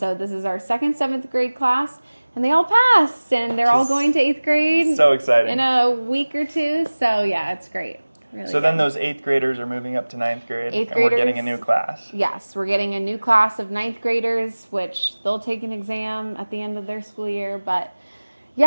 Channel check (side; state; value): both; inverted; correlation -1.00